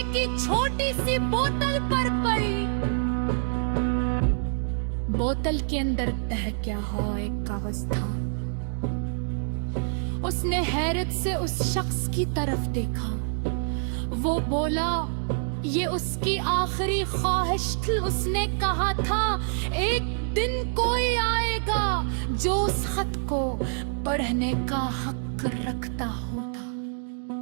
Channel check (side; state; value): left; silent; digital silence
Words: की छोटी सी बोतल पर पड़ी। बोतल के अंदर तहक्या हुआ एक कागज था। उसने हैरत से उस शख्स की तरफ देखा। वो बोला, ये उसकी आखिरी ख्वाहिश थी। उसने कहा था, एक दिन कोई आएगा जो उस खत को पढ़ने का हक रखता होगा।